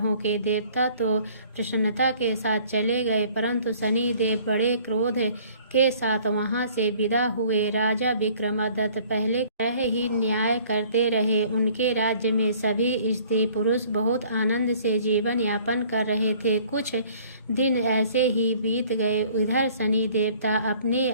के देवता तो प्रसन्नता के साथ चले गए, परंतु शनि देव बड़े क्रोध के साथ वहां से विदा हुए। राजा विक्रमादित्य पहले तरह ही न्याय करते रहे। उनके राज्य में सभी स्त्री पुरुष बहुत आनंद से जीवन यापन कर रहे थे। कुछ दिन ऐसे ही बीत गए। इधर शनि देवता अपने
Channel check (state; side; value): inverted; both; correlation -0.54